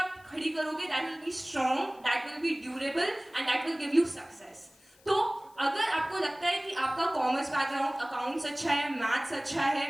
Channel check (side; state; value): left; noise; hiss, 29 dB below the sound